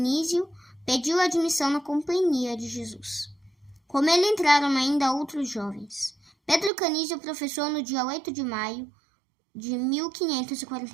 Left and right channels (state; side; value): drops out; left; at 6.7 s